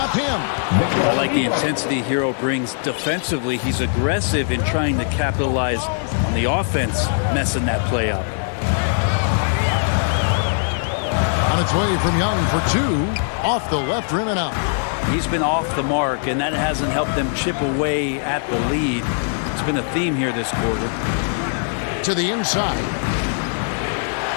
him. I like the intensity Hero brings defensively. He's aggressive in trying to capitalize on the offense, messing that play up. On its way from Young for 2. Off the left rim and out. He's been off the mark, and that hasn't helped them chip away at the lead. It's been a theme here this quarter. To the inside.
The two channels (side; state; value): right; silent; digital silence